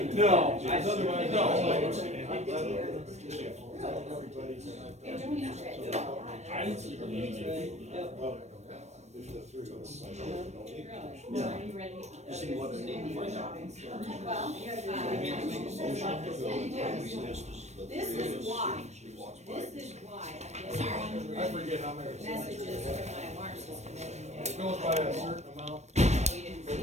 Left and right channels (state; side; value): late; left; 0.32 ms